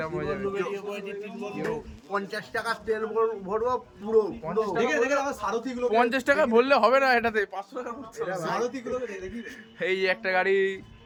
হয়ে যাবে। 50 টাকা তেল ভরবো পুরো। 50 টাকা ভরলে হবে না, এটাতে 500 টাকা ভরতে হবে। এই যে একটা গাড়ি,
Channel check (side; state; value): both; identical; correlation 1.00